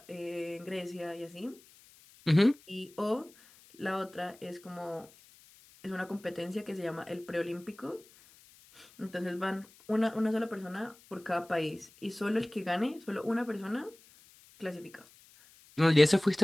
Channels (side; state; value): left; noise; hiss, 25 dB below the sound